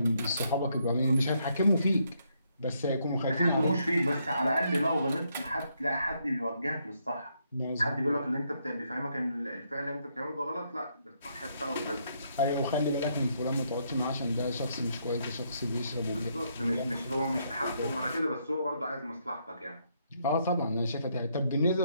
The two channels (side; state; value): both; inverted; correlation -0.75